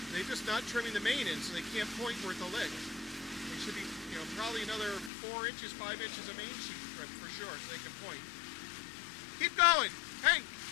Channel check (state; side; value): drops out; right; at 5.1 s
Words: They're just not trimming the main in, so they can't point where the leg. They should be, probably another 4 inches, 5 inches of main sheet trim for sure, so they can point. Keep going. Hey,